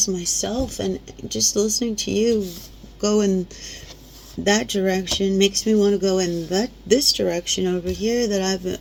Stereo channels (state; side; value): identical; both; correlation 1.00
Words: myself, and just listening to you go in that direction makes me want to go in this direction over here that